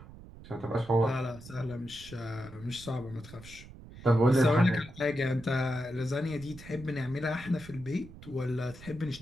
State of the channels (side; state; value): right; noise; rumble, 17 dB below the sound